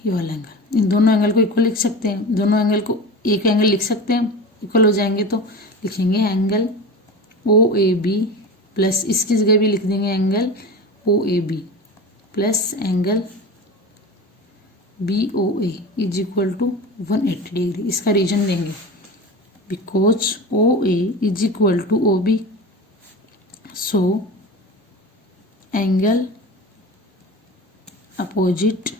ये वाला एंगल, इन दोनों एंगल को इक्वल लिख सकते हैं। दोनों एंगल को एक एंगल लिख सकते हैं, इक्वल हो जाएंगे तो लिखेंगे angle O A B plus इसकी जगह भी लिख देंगे angle O A B plus angle B O A is equal to 180 degree. इसका रीजन देंगे because O A is equal to O B, so angle opposite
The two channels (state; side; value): normal; both; correlation 0.30